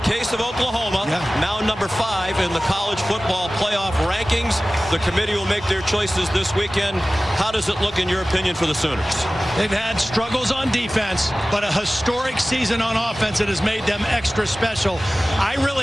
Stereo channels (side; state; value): both; normal; correlation 0.97